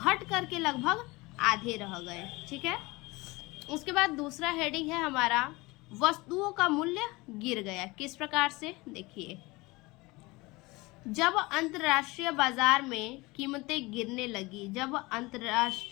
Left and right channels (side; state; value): right; quieter; 22.9 dB